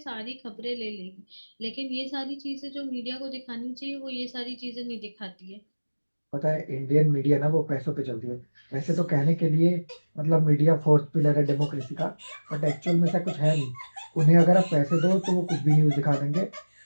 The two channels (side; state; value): both; inverted; correlation -1.00